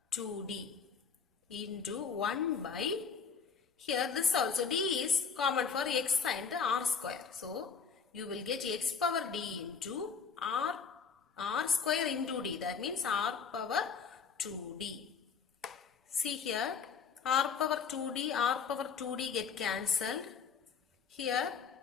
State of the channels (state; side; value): quieter; right; 6.0 dB